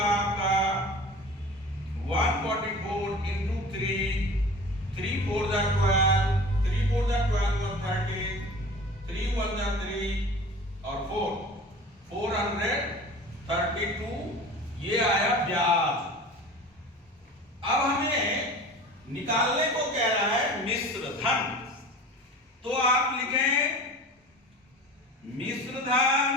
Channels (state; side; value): normal; both; correlation 0.39